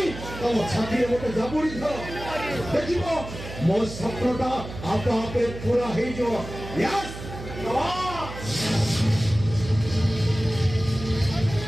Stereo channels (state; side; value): noise; right; hum, 11 dB below the sound